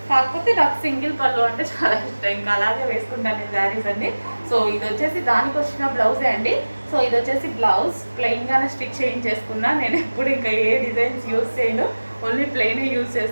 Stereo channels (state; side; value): inverted; both; correlation -1.00